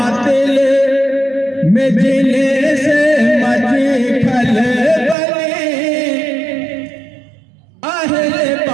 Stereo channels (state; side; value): drops out; left; at 5.2 s